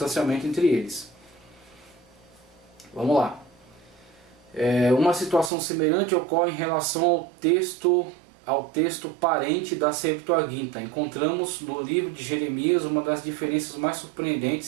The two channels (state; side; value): drops out; left; at 5.5 s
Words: entre eles. Vamos lá. Uma situação semelhante ocorre em relação ao texto parente da Septuaginta. Encontramos no livro de Jeremias uma das diferenças mais